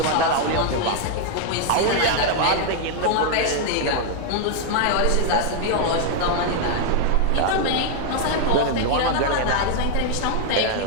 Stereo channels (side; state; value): both; different; correlation 0.00